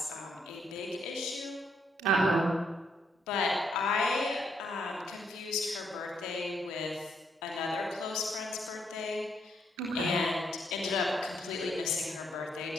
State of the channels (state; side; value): normal; both; correlation 0.74